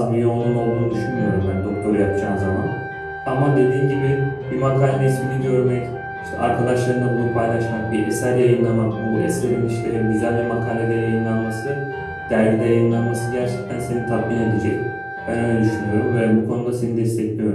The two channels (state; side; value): identical; both; correlation 1.00